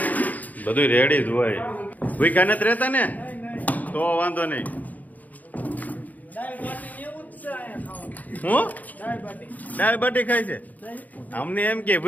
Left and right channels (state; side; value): late; right; 0.079 ms